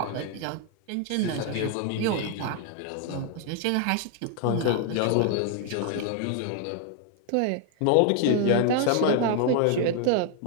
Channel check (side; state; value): both; different; correlation 0.00